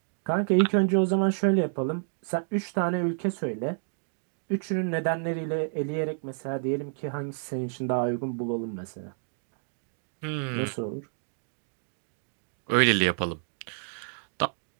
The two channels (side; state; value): left; silent; digital silence